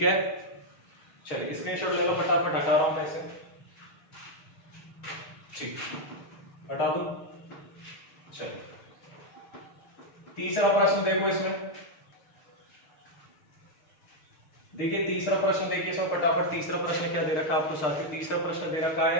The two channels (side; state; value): right; late; 6.6 ms